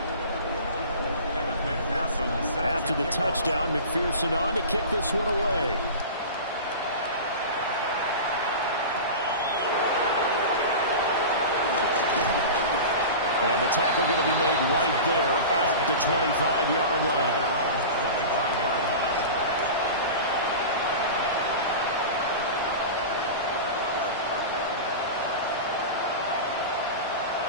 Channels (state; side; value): inverted; both; correlation -0.31